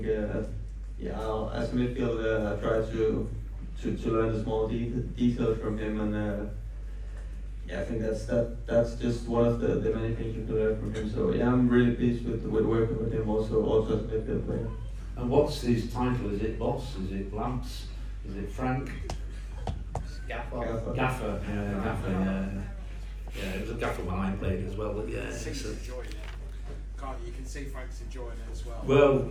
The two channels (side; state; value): both; identical; correlation 1.00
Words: as a midfielder, I try to learn the small details from him, and I think that's just one of the many things you can learn from him. So I'm really pleased with working with him also as a midfield player. And what's his title? Is it boss? Is it Lamps? Is it Frank? Gaffer. Gaffer. Yeah, it was a gaffer when I played as well. But He's enjoying it. You can see Frank's enjoying it as well. Well,